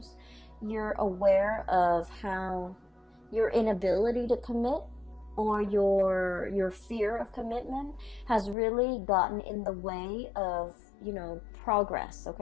you're aware of how your inability to commit, or your fear of commitment, has really gotten in the way of, you know, progress,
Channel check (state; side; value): drops out; right; at 8.6 s